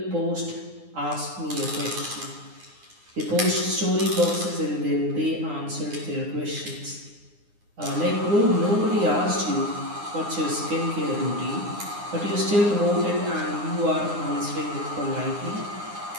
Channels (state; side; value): late; left; 9.8 ms